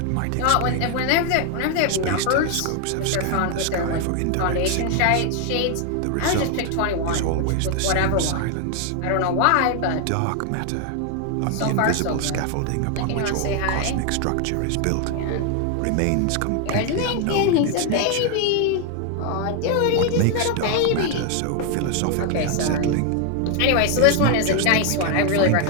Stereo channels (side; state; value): both; different; correlation 0.00